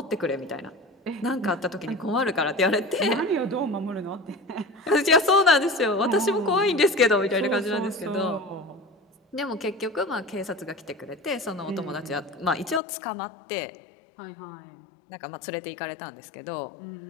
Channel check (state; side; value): drops out; right; at 12.8 s